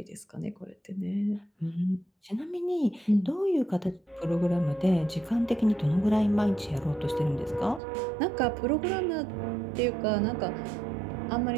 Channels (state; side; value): drops out; left; at 7.8 s